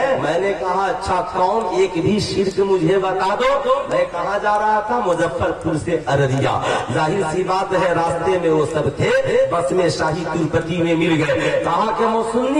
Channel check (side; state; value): both; identical; correlation 1.00